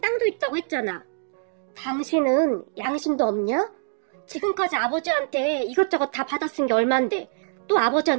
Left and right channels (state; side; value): silent; left; digital silence